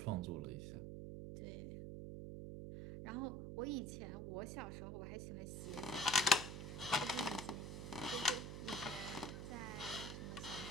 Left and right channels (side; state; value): right; noise; hum, 6 dB below the sound